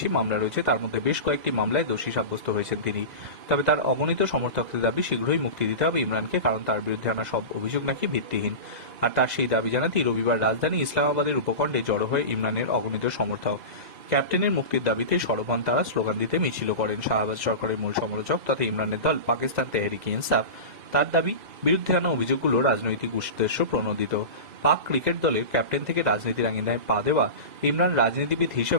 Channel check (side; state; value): left; late; 2.0 ms